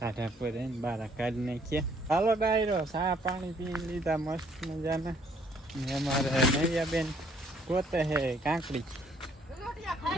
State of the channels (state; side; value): normal; both; correlation 0.64